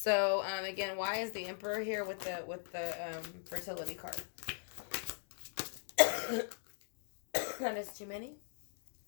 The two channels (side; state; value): right; silent; digital silence